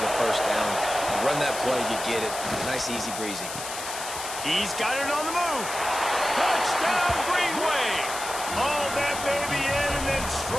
the 1st down. You run that play, you get it. Nice, easy breezy. He's got it on the move. Touchdown, Greenway. Hauled that baby in and then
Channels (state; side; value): noise; left; hiss, 8 dB below the sound